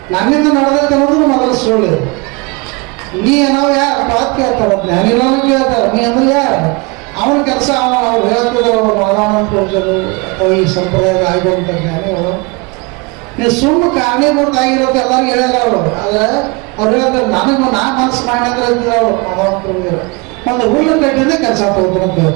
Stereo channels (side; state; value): left; quieter; 28.3 dB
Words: ನನ್ನಿಂದ ನಡೆದೈತೆ ಅನ್ನೋದು ಮೊದಲು ಸುಳ್ಳು. ನೀ ಏನೋ ಯಾರು ಪಾತ್ ಕೇಳ್ತಾರ, ಜ್ಞಾನಿಗಳನ್ನು ಕೇಳ್ತಾರ, ನೀ ಅಂದ್ರೆ ಯಾರು? ಅವನ ಕೆಲಸ ಅವ್ರು ಹೇಳ್ತಿದ್ರು, ಅವರು ಮಾದಾನಂದ ಪೂಜರು ಅಥವಾ ಈ ಸಂಪ್ರದಾಯದ ಆಗಿರುವಂಥ ಜ್ಞಾನಿಗಳು. ನೀವು ಸುಮ್ಮನೆ ಕಾರಣೀಭೂತ ಆಗಿರೋದು ಎಲ್ಲರಿಗೂ ಹೇಳಲ್ಲ ಅವರು. ಆದರೆ ಅವ್ರು ಹೇಳ್ತಾರೆ ನನಗೂ ನಾ ಮನಸ್ಸು ಮಾಡಿ ಅಂದ್ರೆ ಅಂತಿದ್ರು ಅವರು ಮಾದಾನಂದ ಪೂಜರು. ಒಂದು ಹುಲ್ಲು ಕಟ್ಟಿಂದ ಕೆಲಸ ತಗೋತಾರೆ ಅಂತ